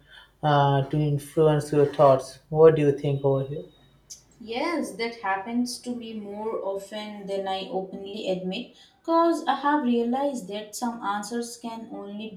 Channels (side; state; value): both; identical; correlation 1.00